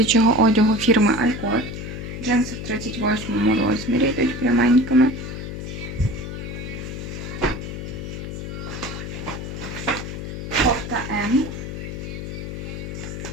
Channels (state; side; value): noise; left; hum, 7 dB below the sound